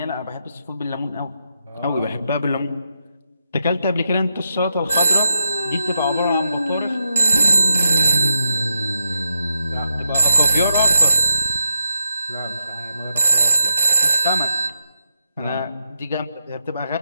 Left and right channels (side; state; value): both; inverted; correlation -0.82